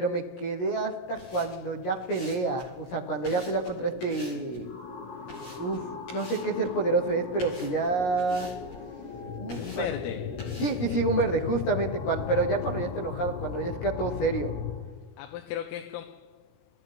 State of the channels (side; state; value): right; late; 17 ms